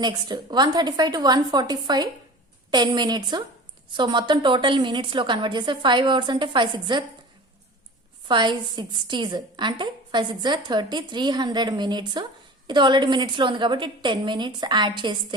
Next 1:35 to 1:45 10 minutes. So మొత్తం total minutes లో కన్వర్ట్ చేస్తే 5 అవర్స్ అంటే 5 60s అంటే 5 6 30 300 మినిట్స్. ఇది ఆల్రెడీ మినిట్స్ లో ఉంది కాబట్టి 10 మినిట్స్ యాడ్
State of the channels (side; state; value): both; normal; correlation 0.38